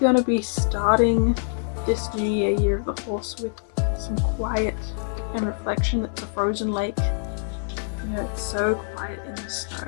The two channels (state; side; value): silent; right; digital silence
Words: to be starting this new year of the horse with some quiet and reflection. It's a frozen lake. You know, it's so quiet in the snow.